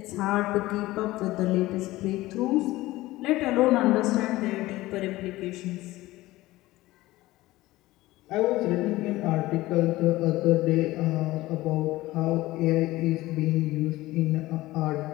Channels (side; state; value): right; quieter; 18.0 dB